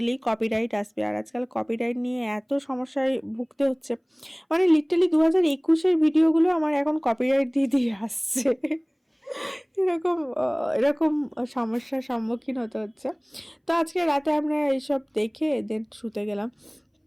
কপিরাইট আসবে। আর আজকাল কপিরাইট নিয়ে এত সমস্যায় ভুগতে হচ্ছে। মানে লিটারালি 2021-এর ভিডিওগুলো আমার এখন কপিরাইট দিয়ে দিয়ে আসছে। এরকম এরকম সমস্যার সম্মুখীন হতে হচ্ছে। তো আজকে রাতে আমরা এইসব দেখে দেন শুতে গেলাম।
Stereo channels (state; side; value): identical; both; correlation 1.00